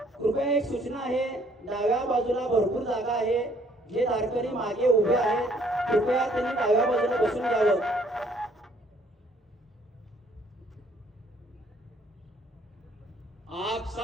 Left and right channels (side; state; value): both; normal; correlation 0.63